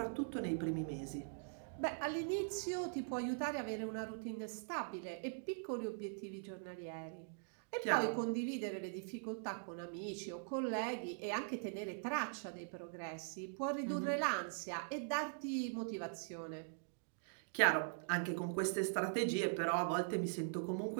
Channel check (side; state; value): left; silent; digital silence